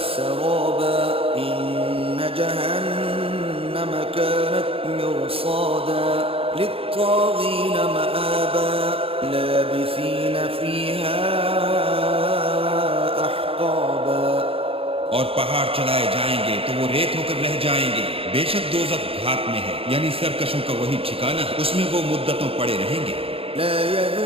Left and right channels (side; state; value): left; late; 0.27 ms